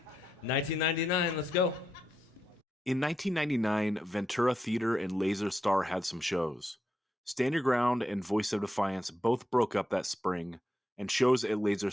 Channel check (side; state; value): both; normal; correlation 0.84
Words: 1999, let's go. In 1999, Ventura Theater and Laser Star had some shows. Stand Your Ground and Voice of Defiance both broke up that spring, and shows at Laser